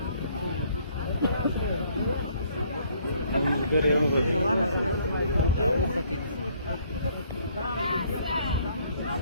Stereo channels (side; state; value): both; inverted; correlation -0.63